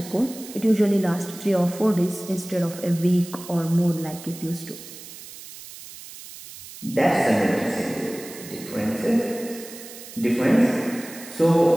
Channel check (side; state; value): right; noise; hiss, 15 dB below the sound